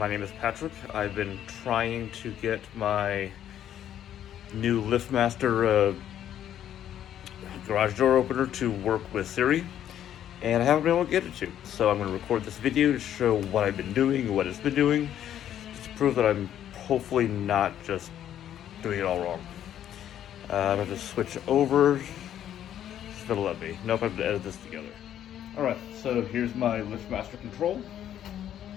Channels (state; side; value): quieter; right; 10.7 dB